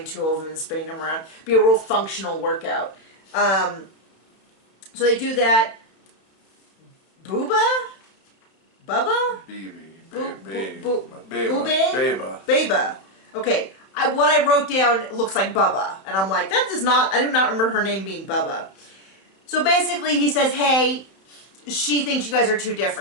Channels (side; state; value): right; late; 31 ms